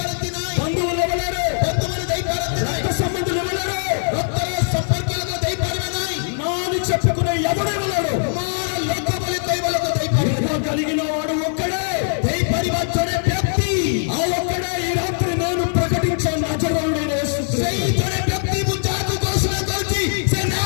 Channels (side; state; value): right; silent; 65 dB below the other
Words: ନାହିଁ, బంధువులు ఇవ్వలేరు, ବନ୍ଧୁମାନେ ଦେଇପାରନ୍ତି ନାହିଁ, రక్త సంబంధులు ఇవ్వలేరు, ରକ୍ତର ସମ୍ପର୍କୀୟ ଲୋକ ଦେଇପାରିବେ ନାହିଁ, నా అని చెప్పుకునే ఎవడు ఇవ్వలేడు. ମୋର ଲୋକ ବୋଲି କହିବା ଲୋକ ଦେଇପାରିବେ ఇదిగో కలిగిన వాడు ఒక్కడే, ଦେଇପାରିବା ଜଣେ ବ୍ୟକ୍ତି, ఆ ఒక్కడే ఈ రాత్రి నేను ప్రకటించే నజరేయుడైన యేసు క్రీస్తు. ସେଇ ଜଣେ ବ୍ୟକ୍ତି ମୁଁ ଯାହାକୁ ଘୋଷଣା କରୁଛି ସେ